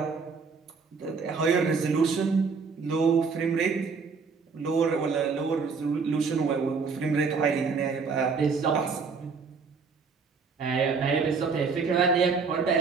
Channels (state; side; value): quieter; left; 5.0 dB